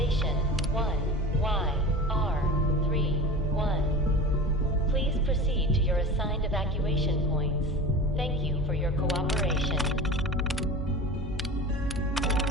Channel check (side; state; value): both; normal; correlation 0.33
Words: 1YR31. Please proceed to your assigned evacuation points. Thank you for your cooperation.